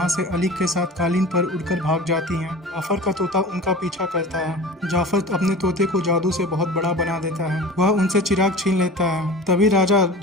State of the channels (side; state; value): both; normal; correlation 0.37